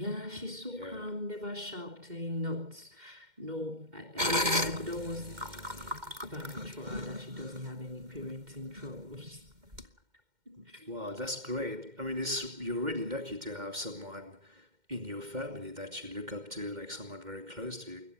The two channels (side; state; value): left; late; 2.1 ms